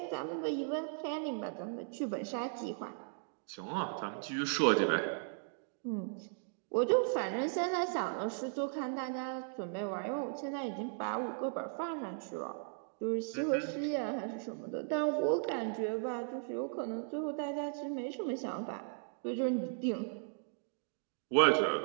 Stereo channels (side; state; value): left; silent; digital silence